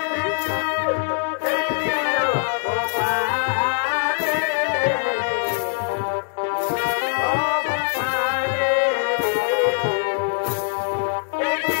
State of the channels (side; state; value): right; silent; digital silence